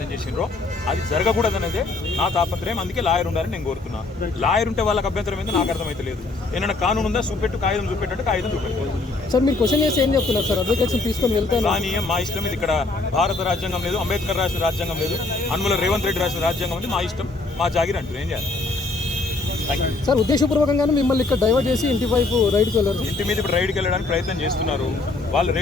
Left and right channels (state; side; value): quieter; right; 3.5 dB